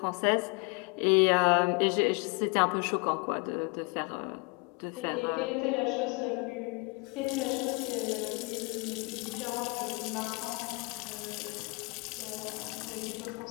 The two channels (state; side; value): quieter; right; 31.1 dB